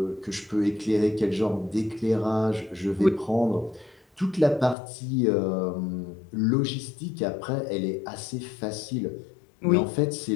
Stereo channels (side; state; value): right; drops out; at 4.8 s